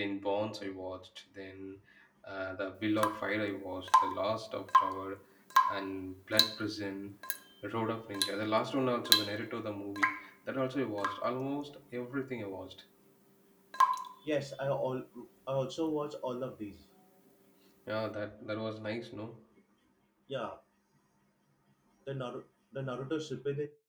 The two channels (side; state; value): both; identical; correlation 1.00